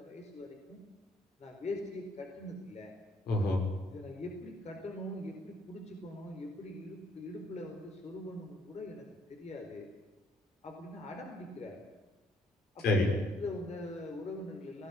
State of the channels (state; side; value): normal; both; correlation 0.67